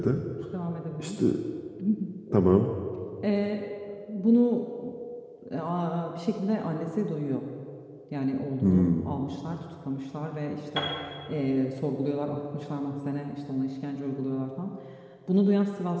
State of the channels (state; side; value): identical; both; correlation 1.00